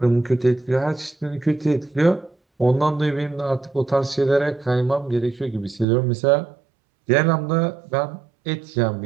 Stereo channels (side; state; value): left; drops out; at 5.9 s